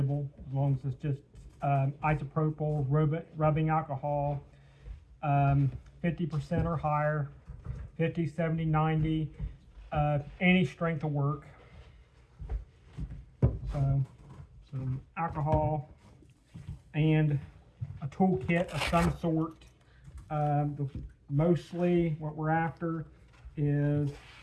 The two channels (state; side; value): identical; both; correlation 1.00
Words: as long as it's just isopropyl rubbing alcohol, 50% or higher, 50, 70, 90, any strength will work. So some alcohol and a toolkit of some sort. Mostly what we're after is